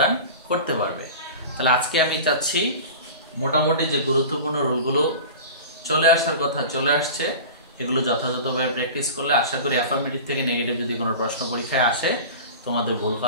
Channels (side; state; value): both; inverted; correlation -0.35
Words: করতে পারবে। তাহলে আজকে আমি চাচ্ছি মোটামুটি যে গুরুত্বপূর্ণ রুলগুলো চলে আসার কথা চলে আসছে, এগুলো যথাযথভাবে প্র্যাকটিস করলে আশা করি অ্যাফার্মেটিভ থেকে নেগেটিভ যদি কোনো প্রশ্ন পরীক্ষায় আসে তোমাদের ভুল